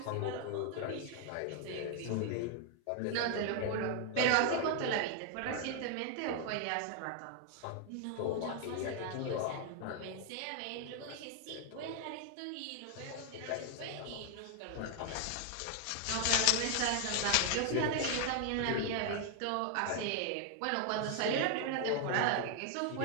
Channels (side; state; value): both; different; correlation 0.00